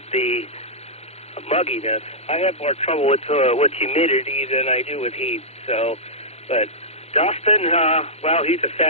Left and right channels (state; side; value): late; right; 0.31 ms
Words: the mugginess. I have more trouble with humidity than I do with heat. So, but Dustin, well, he's a